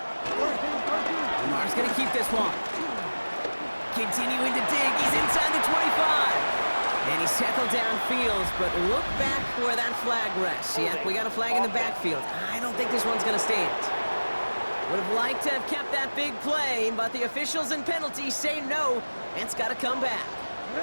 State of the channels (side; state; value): both; inverted; correlation -1.00